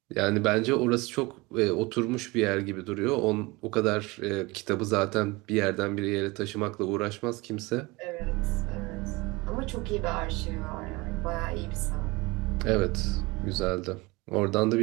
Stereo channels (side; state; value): left; quieter; 23.7 dB